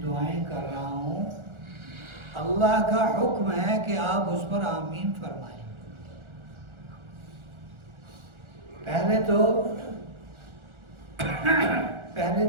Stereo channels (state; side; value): late; left; 1.4 ms